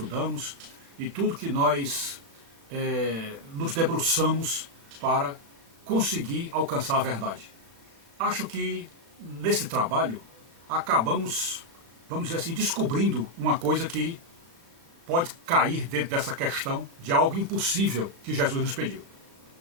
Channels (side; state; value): left; late; 36 ms